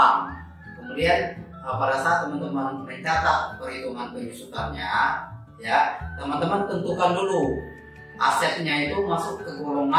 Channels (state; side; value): identical; both; correlation 1.00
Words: Kemudian pada saat teman-teman mencatat perhitungan penyusutannya ya, teman-teman tentukan dulu asetnya itu masuk ke